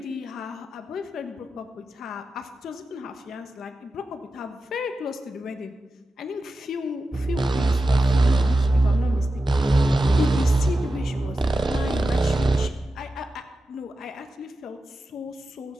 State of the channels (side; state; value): both; normal; correlation 0.91